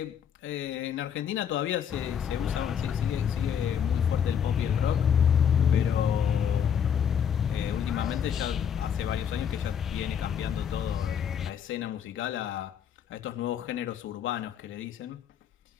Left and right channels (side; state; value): right; quieter; 8.2 dB